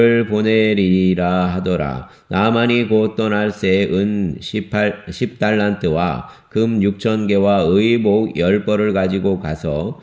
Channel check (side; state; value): both; identical; correlation 1.00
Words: 보내리라 하더라. 나아만이 곧 떠날 새 은 10달란트와 금 6,000개와 의복 10벌을 가지고 가서